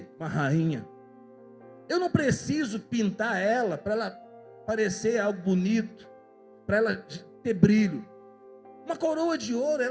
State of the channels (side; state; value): both; identical; correlation 1.00